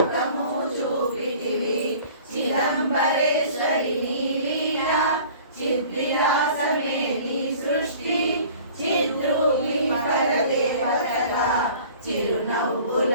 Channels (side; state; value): both; inverted; correlation -0.47